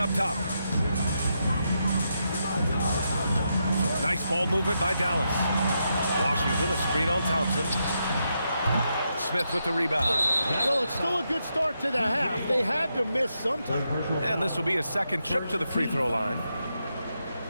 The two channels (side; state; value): both; inverted; correlation -0.83